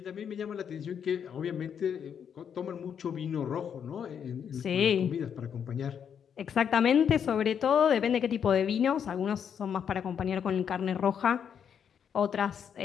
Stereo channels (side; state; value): right; quieter; 7.9 dB